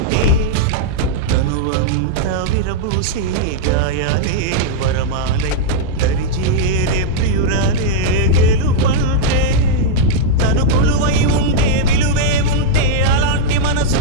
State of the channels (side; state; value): both; different; correlation -0.02